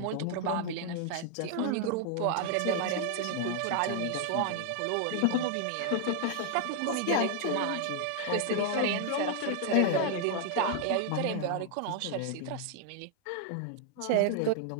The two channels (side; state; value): both; different; correlation 0.00